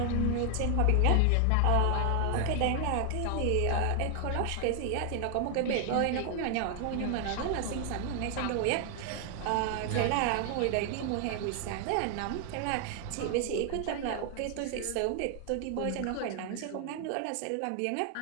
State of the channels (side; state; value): both; different; correlation 0.00